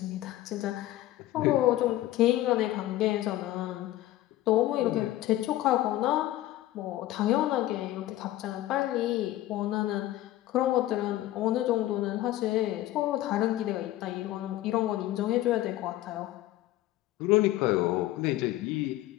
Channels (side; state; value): right; quieter; 15.2 dB